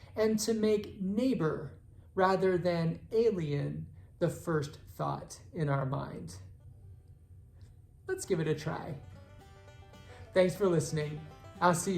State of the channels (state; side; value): identical; both; correlation 1.00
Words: and to make neighbor rather than alien the first thought in our mind. Let's give it a try. Thanks for listening. I'll see